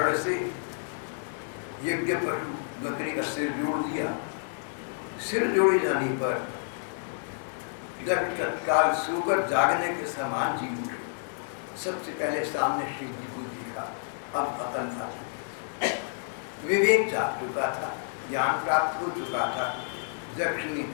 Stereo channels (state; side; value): silent; right; 58 dB below the other